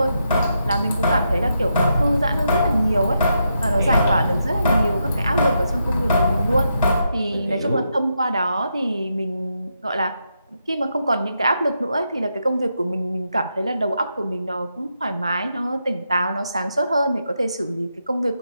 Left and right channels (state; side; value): inverted; both; correlation -0.83